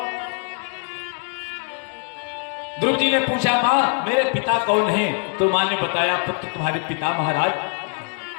ध्रुव जी ने पूछा मां मेरे पिता कौन हैं? तो मां ने बताया पुत्र तुम्हारे पिता महाराज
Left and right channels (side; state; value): right; quieter; 37.5 dB